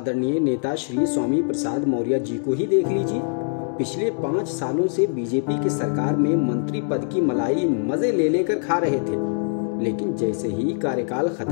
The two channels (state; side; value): silent; right; digital silence